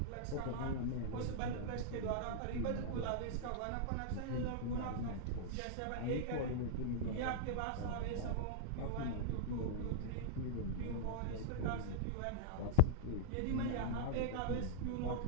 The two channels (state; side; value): different; both; correlation -0.01